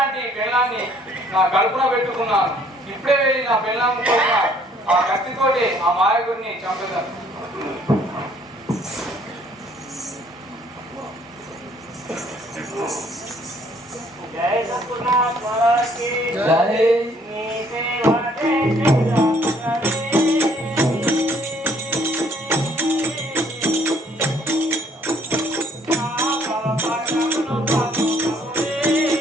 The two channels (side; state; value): both; normal; correlation 0.62